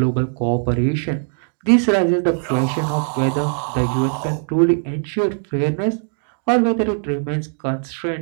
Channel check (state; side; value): silent; left; 66 dB below the other